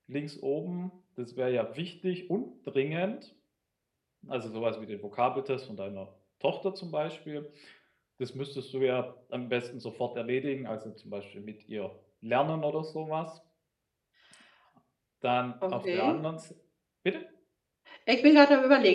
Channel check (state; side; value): identical; both; correlation 1.00